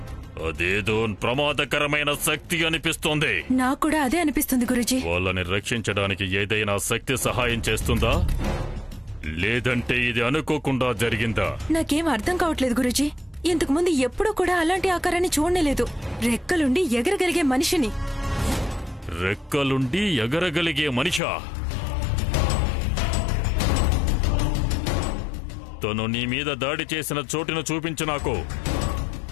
అదేదో ప్రమాదకరమైన శక్తి అనిపిస్తోంది. నాకు కూడా అదే అనిపిస్తుంది గురూజీ. వాళ్ళని రక్షించడానికి ఏదైనా శక్తి సహాయం చేస్తుందా, లేదంటే ఇది అనుకోకుండా జరిగిందా? నాకేం అర్థం కావట్లేదు గురూజీ. ఇంతకు ముందు ఎప్పుడూ కూడా అలాంటి ఆకారాన్ని చూడలేదు. రెక్కలుండి ఎగరగలిగే మనిషిని. రెక్కలుండి ఎగరగలిగే మనిషా? తను నీ మీద దాడి చేసిన చోటును చూపించు నాకు.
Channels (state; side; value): drops out; right; at 21.2 s